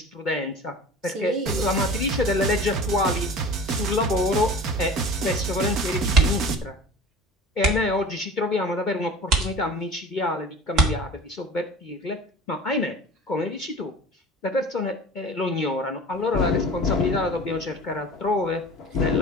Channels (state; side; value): normal; both; correlation 0.38